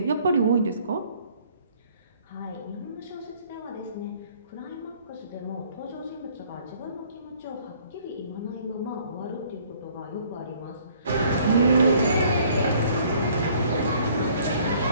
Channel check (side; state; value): both; inverted; correlation -0.59